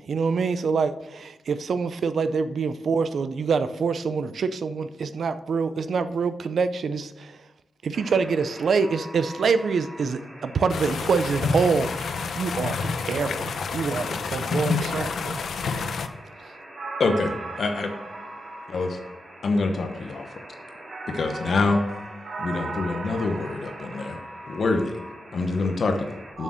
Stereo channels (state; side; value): normal; both; correlation 0.82